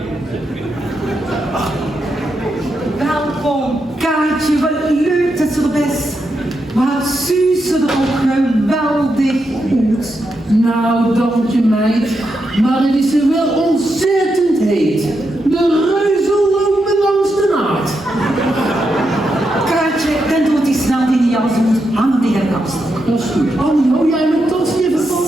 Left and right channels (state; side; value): normal; both; correlation 0.84